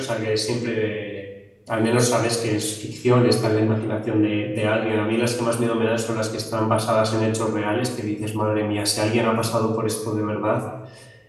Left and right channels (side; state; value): both; identical; correlation 1.00